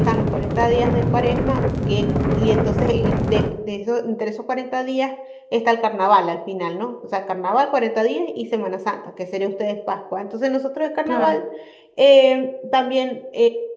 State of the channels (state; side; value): identical; both; correlation 1.00